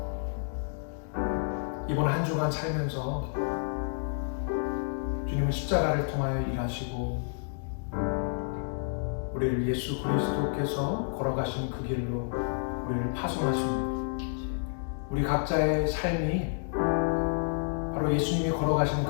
이번 한 주간 살면서 주님은 십자가를 통하여 일하시고 우리를 예수 그리스도께서 걸어가신 그 길로 우리를 파송하십니다. 우리 각자의 삶이 바로 예수님이 걸어가시는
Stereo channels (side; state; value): right; silent; digital silence